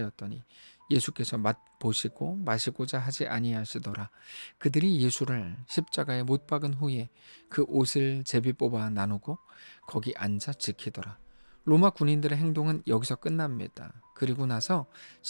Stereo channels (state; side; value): inverted; both; correlation -1.00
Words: 예수께서 맛보시고 마시고자 하지 아니하시더라. 그들이 예수를 십자가에 못 박은 후에 그 옷을 제비 뽑아 나누고 거기 앉아 지키더라. 로마 군인들의 행동은 여기서 끝납니다. 그리고 나서